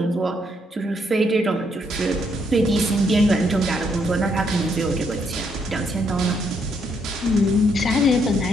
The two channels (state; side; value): normal; both; correlation 0.74